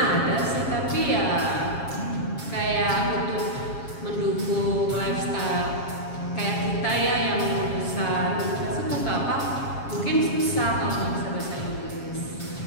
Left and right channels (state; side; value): late; right; 7.3 ms